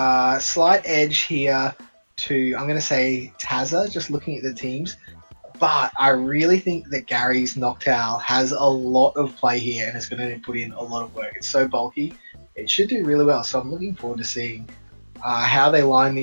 slight edge here to I'm gonna say Tazza. Just looking at the teams, but I really think that Gary's Noctowl has a lot of play here and it's gonna put in a lot of work. It's so bulky. It should do really well. So I'm looking forward to seeing how they line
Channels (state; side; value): inverted; both; correlation -1.00